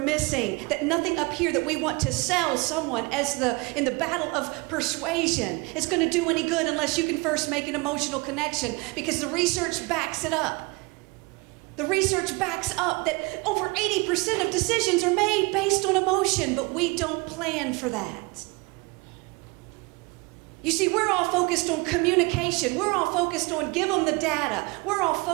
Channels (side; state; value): left; quieter; 26.6 dB